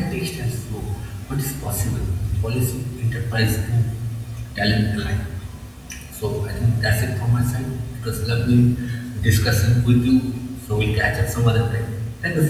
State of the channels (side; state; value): both; identical; correlation 1.00